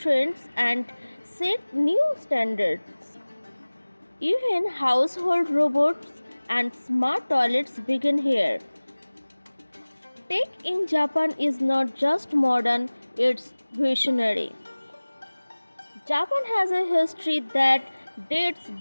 and set new standards. Even household robots and smart toilets begin here. Tech in Japan is not just modern, it's visionary. Japan has a history that dates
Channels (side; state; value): both; inverted; correlation -1.00